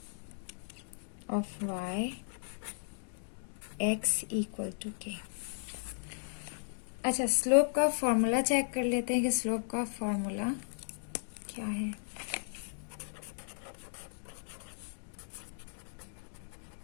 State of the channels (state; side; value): silent; right; digital silence